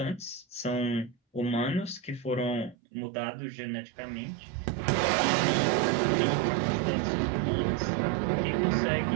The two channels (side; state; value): left; drops out; at 2.8 s